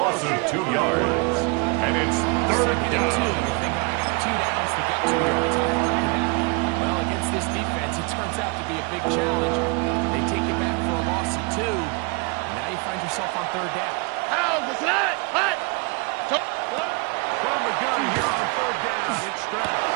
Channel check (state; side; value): quieter; left; 31.4 dB